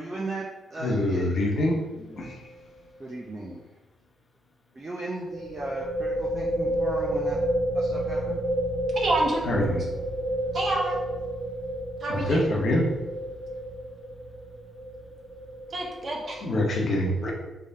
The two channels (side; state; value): both; normal; correlation 0.75